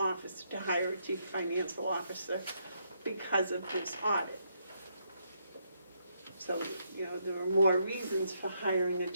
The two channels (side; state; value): both; inverted; correlation -0.76